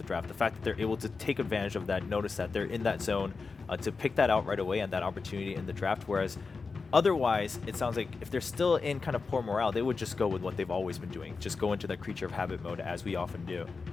draft. The fact that they're able to take advantage of that, notice that they're in that zone, to pick that out right away and that opportunity in the draft, whereas otherwise, it sounds like if they're still in kind of poor morale, they would just go with what they've always been doing, just go into that creature of habit mode as we often do.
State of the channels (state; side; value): quieter; right; 4.5 dB